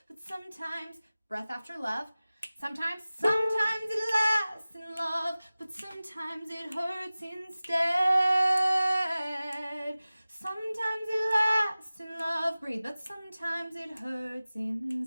but sometimes breath after love. Sometimes it lasts in love, but sometimes it hurts instead. Sometimes it lasts in love, breathe, but sometimes it hurts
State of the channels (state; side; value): inverted; both; correlation -0.97